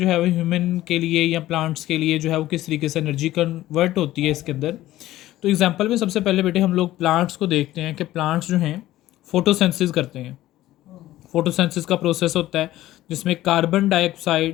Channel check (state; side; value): quieter; right; 15.1 dB